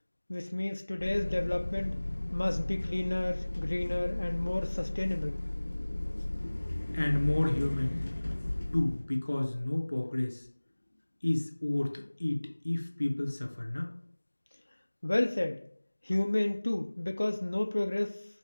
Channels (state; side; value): inverted; both; correlation -1.00